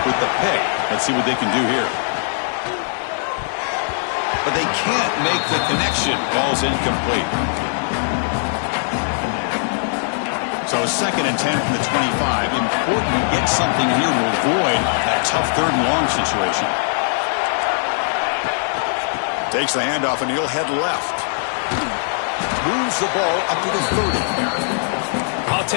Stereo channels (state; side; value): silent; right; digital silence